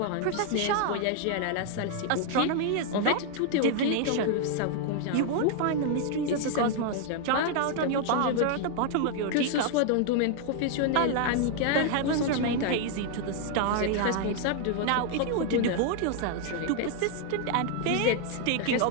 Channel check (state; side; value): different; both; correlation 0.00